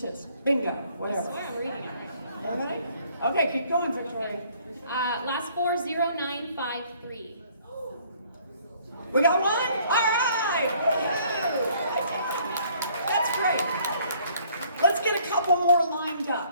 Bingo, I whatever. swear I'm reading it right. Everybody? Okay, keep going, Victoria. Last 4, 0953. We got one? All right! That's great. Let's get a couple more lined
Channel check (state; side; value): inverted; both; correlation -0.61